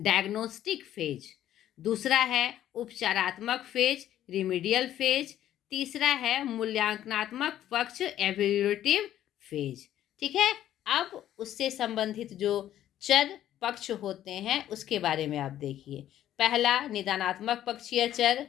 फेज। दूसरा है उपचारात्मक फेज, रिमीडियल फेज। तीसरा है मूल्यांकनात्मक पक्ष, एवेल्यूएटिव फेज। ठीक है, अब उससे संबंधित जो चर पक्ष होते हैं उसके बारे में आप देखिए। पहला निदानात्मक पक्षीय चर,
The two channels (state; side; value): quieter; right; 12.0 dB